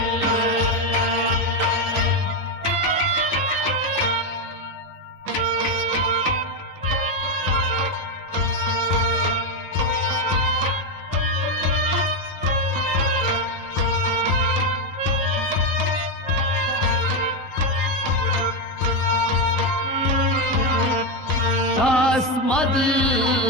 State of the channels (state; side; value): normal; both; correlation 0.07